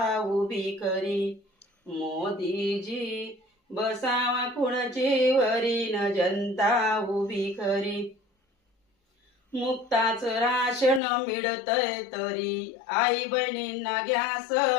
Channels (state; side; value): drops out; right; at 11.0 s